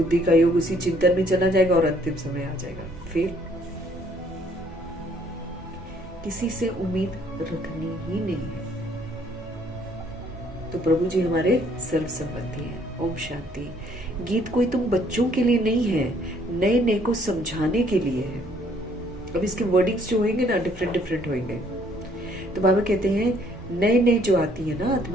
का योग उसी चिंतन में चला जाएगा और अंतिम समय आ जाएगा। फिर किसी से उम्मीद रखनी ही नहीं है। तो प्रभु जी हमारे सर्व संबंधी हैं। ओम शांति। गीत कोई तुम बच्चों के लिए नहीं है, नए नए को समझाने के लिए है। अब इसके वर्डिंग्स जो होंगे ना डिफरेंट डिफरेंट होंगे। तो बाबा कहते हैं नए नए जो आती है ना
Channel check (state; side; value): normal; both; correlation 0.63